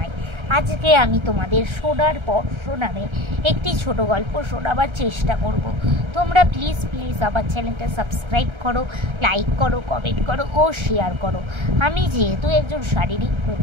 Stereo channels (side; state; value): left; late; 1.3 ms